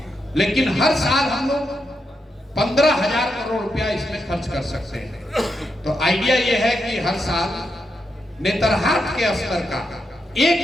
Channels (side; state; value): both; normal; correlation 0.84